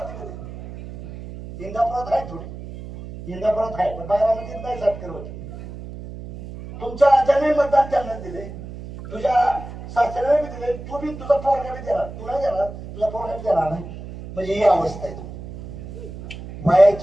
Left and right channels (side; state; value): right; noise; hum, 12 dB below the sound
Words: इंदापुरात आहे थोडी, इंदापुरात आहे पण बारामतीत नाही. सत्कर होते तुमच्या राजाने मतदान त्यांना दिले, तुझ्या सासऱ्याने बी दिले, तू बी तुझा पोरगा बी देणार, तू नाही देणार, तुझा पोरगा बी देणार नाही. म्हणजे ही अवस्था आहे.